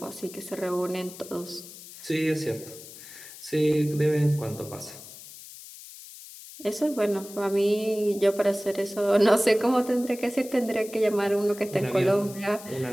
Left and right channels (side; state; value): left; noise; hiss, 16 dB below the sound